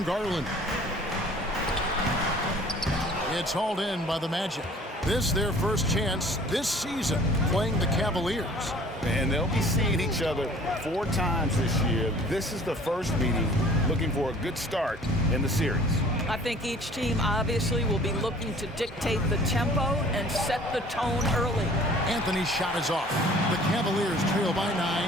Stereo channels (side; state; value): both; normal; correlation 0.51